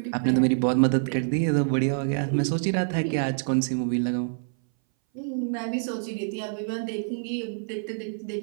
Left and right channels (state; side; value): silent; left; 59 dB below the other